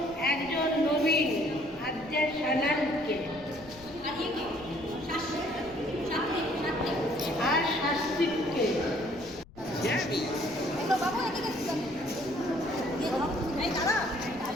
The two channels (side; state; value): left; noise; rumble, 22 dB below the sound